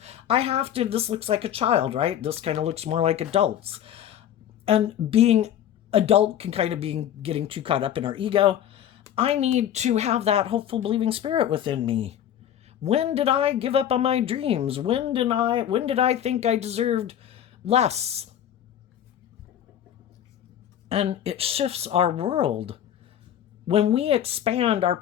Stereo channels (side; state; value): right; quieter; 10.5 dB